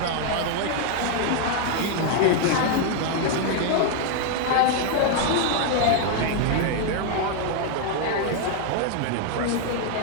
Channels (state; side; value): different; both; correlation 0.00